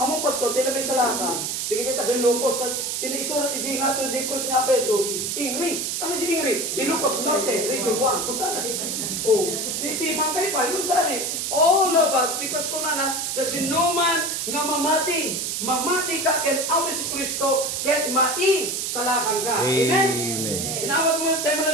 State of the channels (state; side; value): noise; right; hiss, 2 dB below the sound